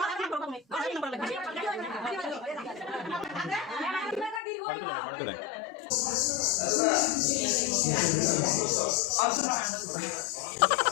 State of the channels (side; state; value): right; drops out; at 4.4 s